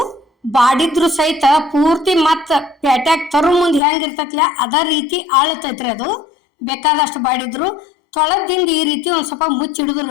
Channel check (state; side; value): drops out; right; at 3.8 s